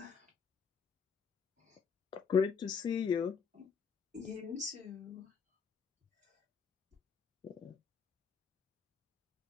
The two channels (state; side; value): quieter; right; 6.2 dB